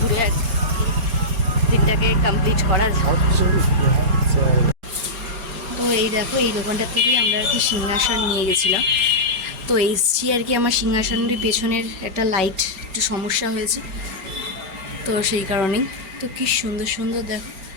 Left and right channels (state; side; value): late; left; 4.3 ms